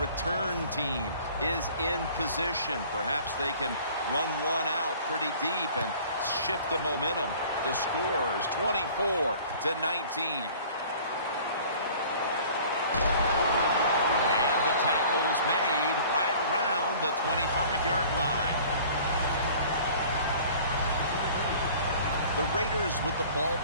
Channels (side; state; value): both; inverted; correlation -0.48